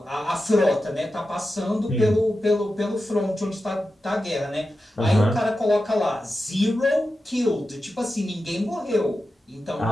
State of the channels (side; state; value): both; normal; correlation 0.91